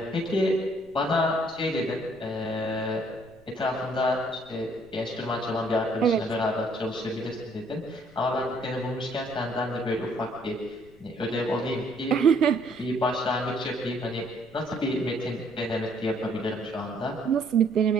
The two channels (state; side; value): noise; left; rumble, 25 dB below the sound